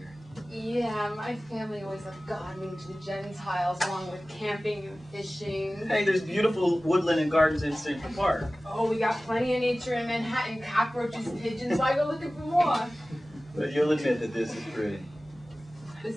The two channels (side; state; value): both; normal; correlation 0.97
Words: Yeah, my family always loved gardening to the Gentiles, along with camping and fishing. Hey, there's beautiful woodland and gardens in Central Park. Oh, we got plenty of nature in Manhattan. Cockroaches, pigeons. Why go looking for more? But you'll admit that this is pretty. This